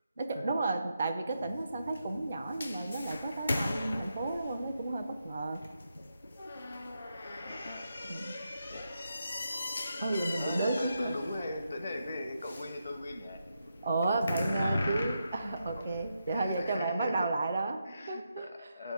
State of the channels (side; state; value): both; inverted; correlation -0.84